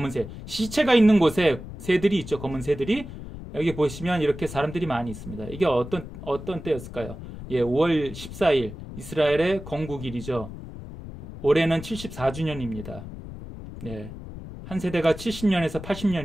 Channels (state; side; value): noise; left; rumble, 12 dB below the sound